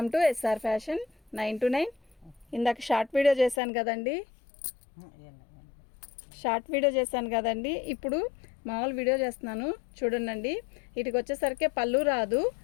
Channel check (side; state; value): right; drops out; at 3.6 s